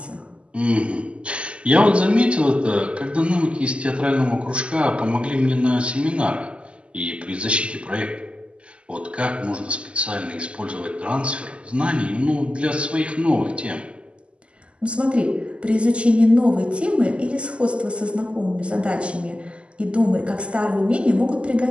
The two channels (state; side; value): late; left; 0.055 ms